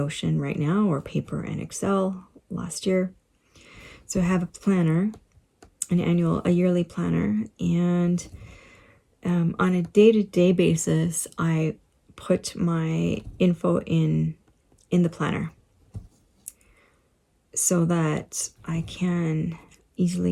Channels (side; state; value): both; identical; correlation 1.00